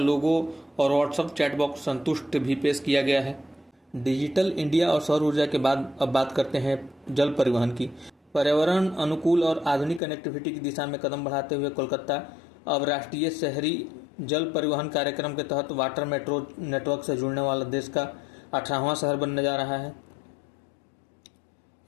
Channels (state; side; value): drops out; right; at 10.0 s